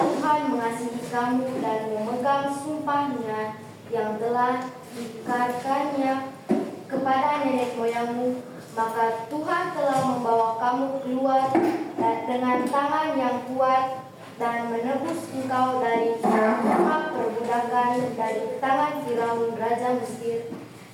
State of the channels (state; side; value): identical; both; correlation 1.00